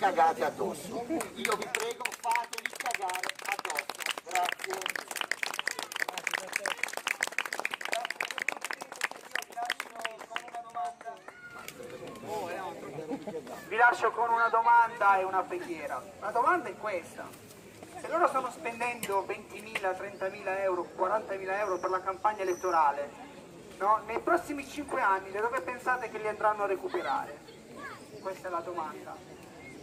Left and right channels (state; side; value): identical; both; correlation 1.00